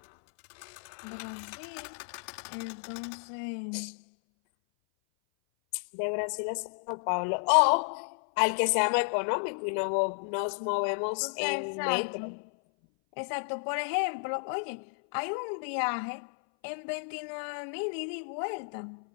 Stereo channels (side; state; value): right; silent; 56 dB below the other